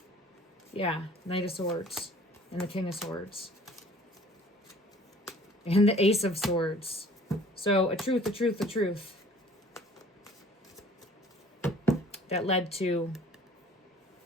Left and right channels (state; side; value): normal; both; correlation 0.51